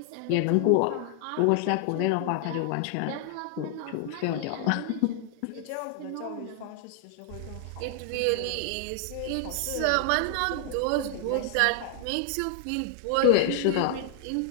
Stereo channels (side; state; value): both; different; correlation 0.00